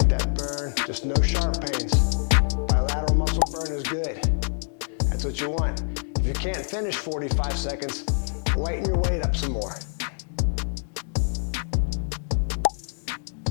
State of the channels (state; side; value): silent; right; digital silence